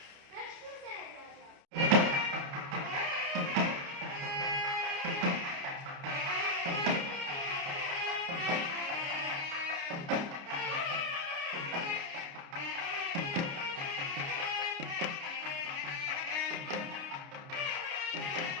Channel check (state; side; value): late; left; 29 ms